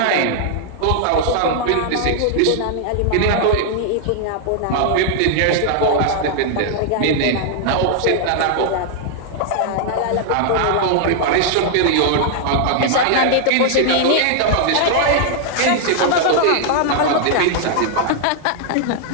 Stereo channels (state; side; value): different; both; correlation -0.01